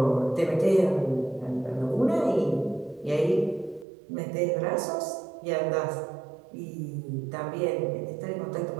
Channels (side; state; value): left; drops out; at 3.9 s